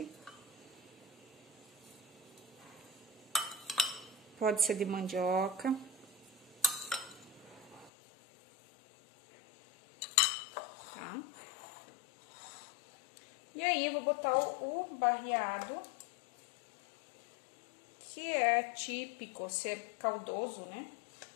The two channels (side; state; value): right; drops out; at 7.9 s